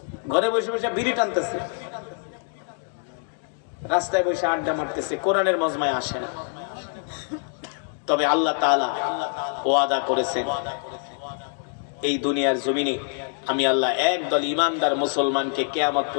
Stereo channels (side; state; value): right; silent; 55 dB below the other